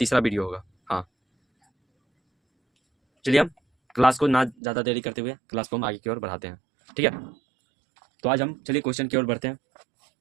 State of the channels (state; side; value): drops out; left; at 4.5 s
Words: वीडियो होगा। हाँ, चलिए हम क्लास को ना ज़्यादा देरी करते हुए क्लास को हम आगे की ओर बढ़ाते हैं। ठीक है, तो आज हम चलिए क्वेश्चन की ओर बढ़ते हैं।